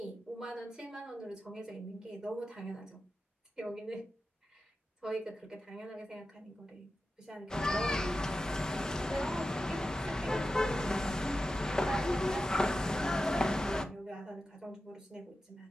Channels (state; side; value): normal; both; correlation 0.92